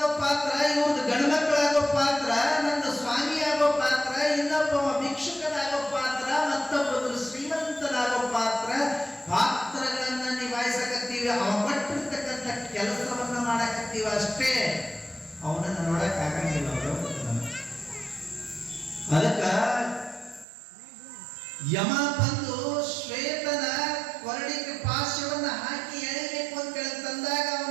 ಪಾತ್ರ, ಇವ್ರದ್ದು ಗಂಡು ಮಕ್ಕಳಾಗೋ ಪಾತ್ರ, ನಂದು ಸ್ವಾಮಿ ಆಗೋ ಪಾತ್ರ, ಇನ್ನೊಬ್ಬ ಭಿಕ್ಷುಕನಾಗೋ ಪಾತ್ರ, ಮತ್ತೊಬ್ಬರು ಶ್ರೀಮಂತನಾಗೋ ಪಾತ್ರ. ಪಾತ್ರಗಳನ್ನ ನಿಭಾಯಿಸಕತ್ತೀವಿ. ಅವ ಪಟ್ಟಿರ್ತಕ್ಕಂಥ ಕೆಲಸವನ್ನ ಮಾಡಕತ್ತೀವಿ ಅಷ್ಟೇ. ಅವನನ್ನ ನೋಡಕ್ ಆಗಂಗಿಲ್ಲ ಅವರು. ಅದಕ್ಕ ಯಮ ಬಂದು ಶ್ವೇತನ ಕೊರಳಿಗೆ ಪಾಶವನ್ನ ಹಾಕಿ ಎಳಿಬೇಕು ಅಂತ ತಂದಾಗ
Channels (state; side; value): drops out; left; at 20.5 s